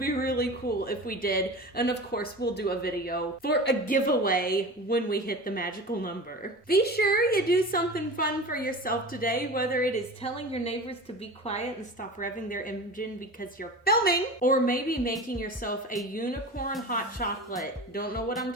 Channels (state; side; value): normal; both; correlation 0.33